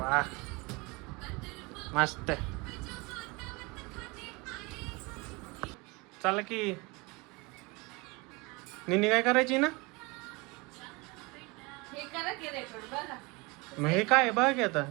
मस्त. चला की निनी काय करायची ना. हे करा की रेकॉर्ड बघा. मग हे काय बघा की आता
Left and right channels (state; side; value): quieter; left; 26.2 dB